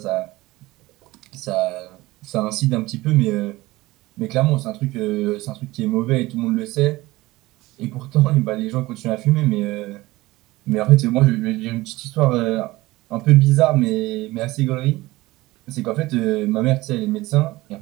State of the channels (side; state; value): left; quieter; 19.3 dB